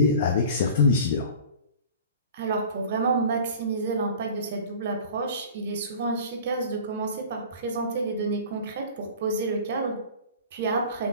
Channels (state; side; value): inverted; both; correlation -0.41